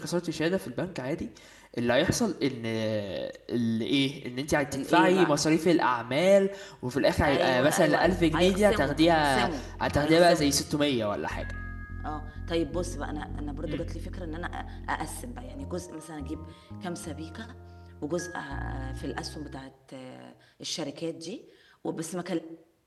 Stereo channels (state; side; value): identical; both; correlation 1.00